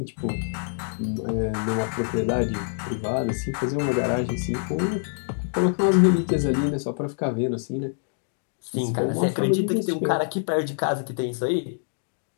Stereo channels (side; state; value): right; silent; digital silence